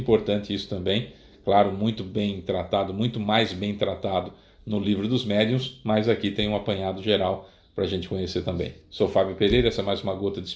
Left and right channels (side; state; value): both; identical; correlation 1.00